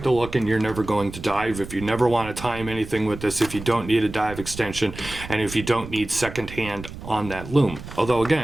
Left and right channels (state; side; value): noise; right; rumble, 12 dB below the sound